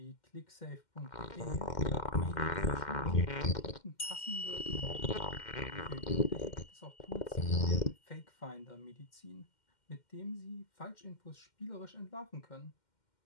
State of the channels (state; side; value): late; right; 2.1 ms